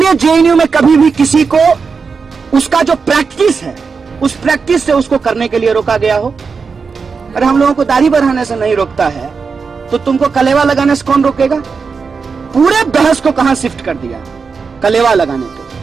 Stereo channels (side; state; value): left; quieter; 5.2 dB